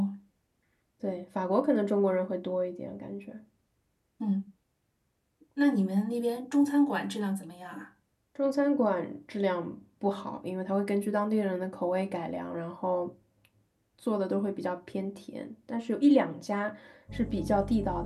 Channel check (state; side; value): identical; both; correlation 1.00